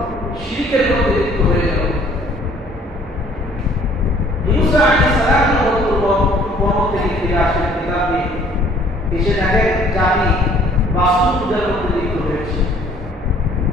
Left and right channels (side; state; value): both; normal; correlation 0.57